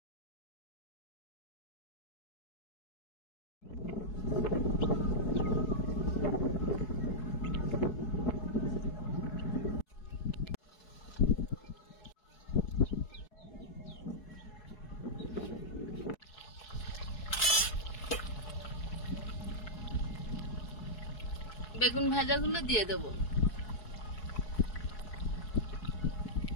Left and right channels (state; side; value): late; right; 4.7 ms